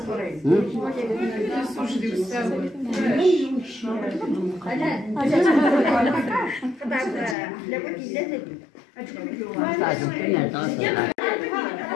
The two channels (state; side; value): drops out; right; at 7.4 s